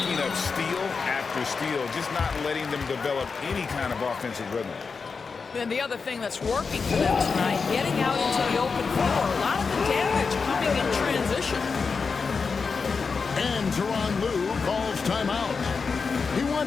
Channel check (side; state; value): right; quieter; 5.0 dB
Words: up steal after steal, just not letting them develop any kind of offensive rhythm. And the other thing that's working for them tonight, getting out into the open floor. A lot of the damage coming in transition. And Tyronn Lue calls timeout. He